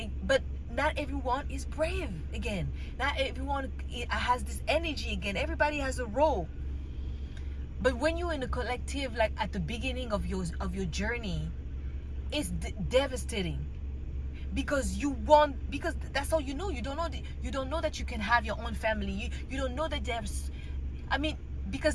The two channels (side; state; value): both; identical; correlation 1.00